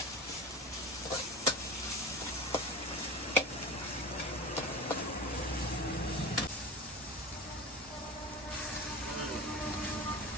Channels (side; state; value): both; normal; correlation 0.31